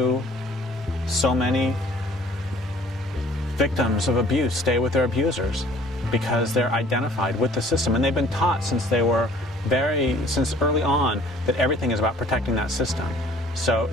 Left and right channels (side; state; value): both; normal; correlation 0.54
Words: so many victims of abuse stay with their abusers? Because they're identified with the system, and they've been taught since early on that everything is about protecting that system. So